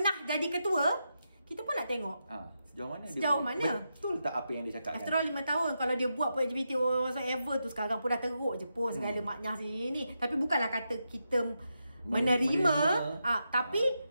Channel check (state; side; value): inverted; both; correlation -0.86